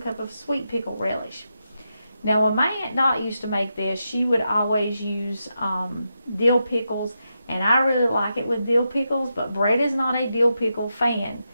cup of sweet pickle relish. Now, when my Aunt Dot used to make this, she would always use dill pickles, and I really like it with dill pickles, but Brett is not a dill pickle fan,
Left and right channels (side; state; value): both; inverted; correlation -0.86